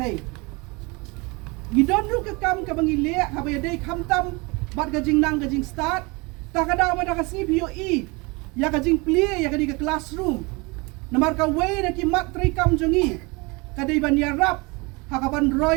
gidon ru ka kam ka bangile ka bayadai kamtam bat ka jing nang ka jing start ta ka daw da ka CPOE ya ka jing plie ya ka di ka classroom namar ka way na ki mat tray kam jongi ka dai ban ya rap ha ka ban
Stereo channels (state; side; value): quieter; left; 27.0 dB